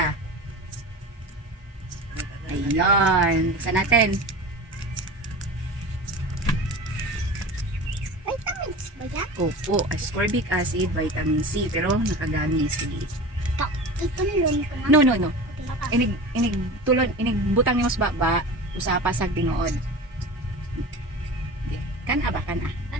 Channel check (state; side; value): normal; both; correlation 0.33